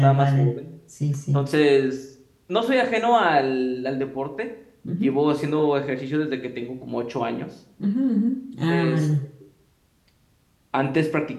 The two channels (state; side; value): identical; both; correlation 1.00